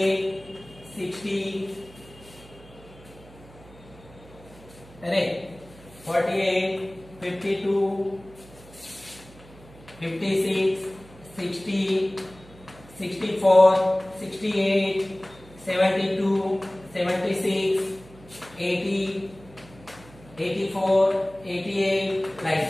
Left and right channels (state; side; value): noise; right; hum, 22 dB below the sound